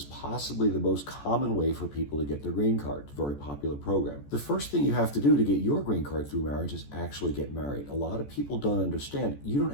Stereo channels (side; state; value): right; late; 14 ms